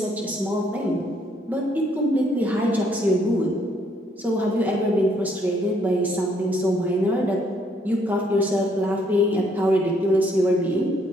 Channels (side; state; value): both; normal; correlation 0.68